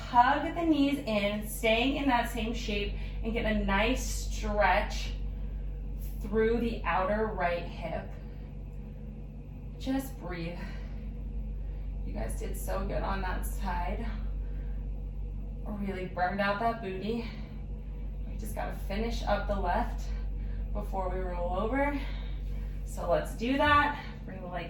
hug the knees in, staying in that same shape, and get a nice stretch through the outer right hip. Just breathe. You guys did so good on that side. Really burned out that booty. We just gotta finish up the left before we roll over. So let's do that. Bring the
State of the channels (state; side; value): identical; both; correlation 1.00